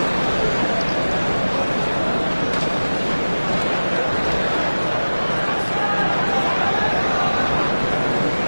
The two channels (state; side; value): inverted; both; correlation -1.00